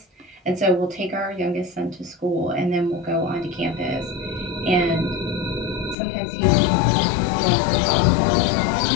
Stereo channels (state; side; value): drops out; right; at 6.0 s